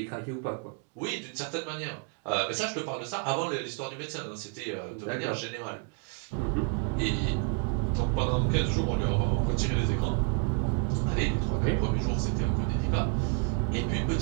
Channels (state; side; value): quieter; left; 38.9 dB